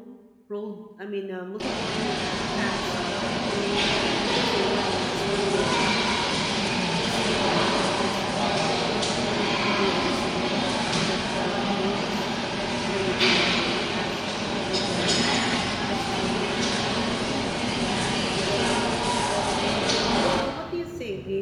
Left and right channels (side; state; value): both; identical; correlation 1.00